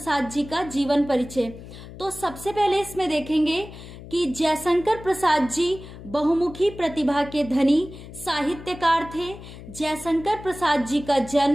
जी का जीवन परिचय। तो सबसे पहले इसमें देखेंगे कि जयशंकर प्रसाद जी बहुमुखी प्रतिभा के धनी साहित्यकार थे। जयशंकर प्रसाद जी का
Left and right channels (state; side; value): noise; left; hum, 15 dB below the sound